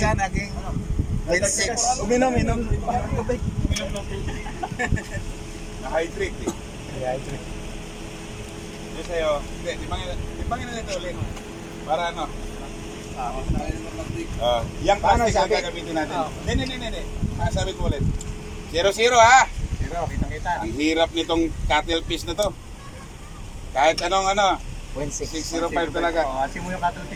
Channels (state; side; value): identical; both; correlation 1.00